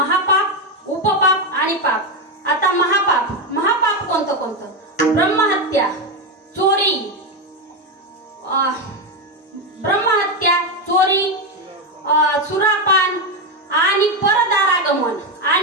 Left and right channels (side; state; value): both; normal; correlation 0.09